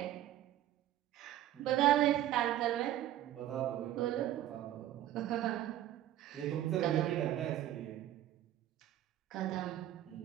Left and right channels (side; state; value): left; quieter; 12.9 dB